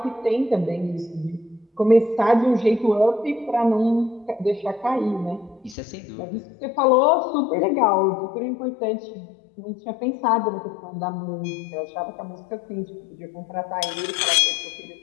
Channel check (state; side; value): drops out; right; at 5.8 s